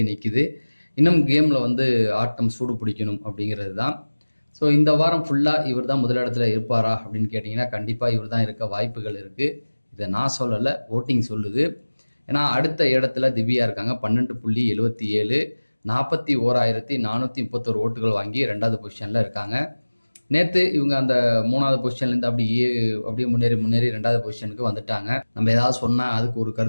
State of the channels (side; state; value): both; inverted; correlation -1.00